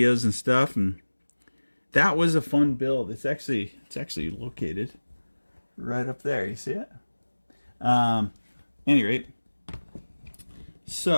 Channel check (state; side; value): inverted; both; correlation -1.00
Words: and stuff, and that was a fun build. It's actually located right up there. You see it? Any rate,